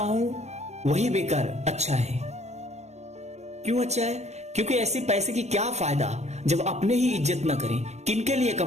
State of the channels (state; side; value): late; left; 0.32 ms